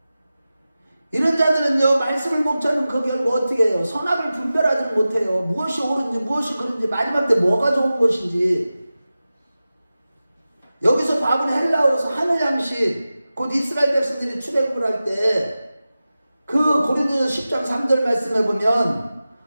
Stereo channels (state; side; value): inverted; both; correlation -0.95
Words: 이런 자들은요, 말씀을 목자는 그 결과 어떻게 해요? 선악을 분별하지 못해요. 무엇이 옳은지 무엇이 그른지 마지막 때 뭐가 좋은 것인지. 여기서 밥은 헬라어에서 하늘 양식, 곧 이스라엘 백성들이 출애굽을 할 때 그 고린도전서 10장 3절 말씀해 보면